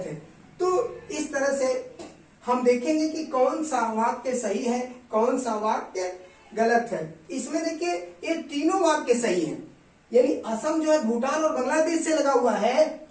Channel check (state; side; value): identical; both; correlation 1.00